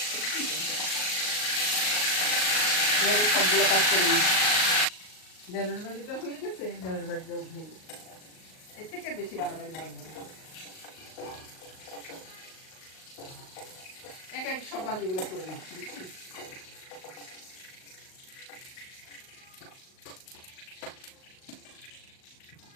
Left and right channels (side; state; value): right; late; 38 ms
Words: এবারে সবগুলো কাজ করে নিই। ডালের ভাজিটা হয়ে গেছে, ডালের ভাজিটা উঠিয়ে নিই। এর থেকে বেশি বাড়াবাড়ি ভাজবো না, এক সব ভাজিগুলো করে নিচ্ছি।